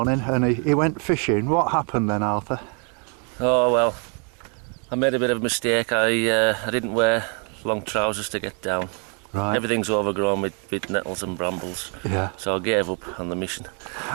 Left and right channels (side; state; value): left; quieter; 39.1 dB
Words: and he went fishing. What happened then, Arthur? Oh well, I made a bit of a mistake. I didn't wear long trousers to get down. Right. Everything's overgrown with nettles and brambles. Yeah. So I gave up on the mission.